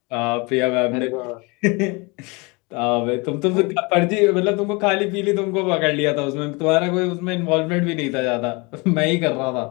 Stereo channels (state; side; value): quieter; right; 27.7 dB